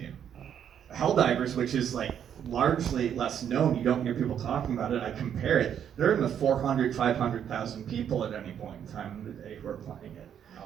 Helldivers, which is largely less known, you don't hear people talking about it, I compare it, they're in the 400, 500,000 people at any point in time in the day who are playing it.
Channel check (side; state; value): left; quieter; 9.0 dB